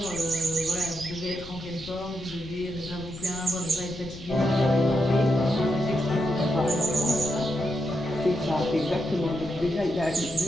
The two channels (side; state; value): left; noise; rumble, 15 dB below the sound